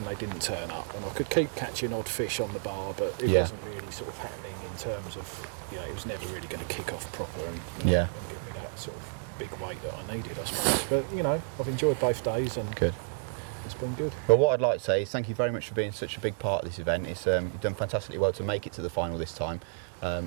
they didn't turn up, and I could keep catching odd fish on the bar, but it wasn't really sort of happening in terms of, it was never really going to kick off proper and give me that sort of big weight that I needed, I suppose. But I've enjoyed both days, and good. It's been good. Well, what I'd like to say is thank you very much for being such a big part of this event. It's you've done fantastically well to make it to the final this time,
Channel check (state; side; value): silent; left; 57 dB below the other